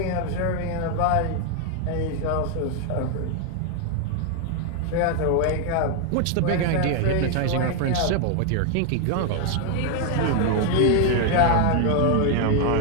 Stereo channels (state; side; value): different; both; correlation 0.01